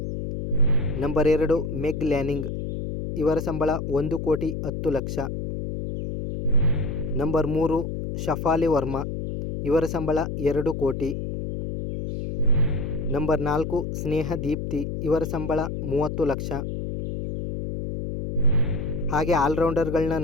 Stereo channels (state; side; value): noise; left; hum, 4 dB below the sound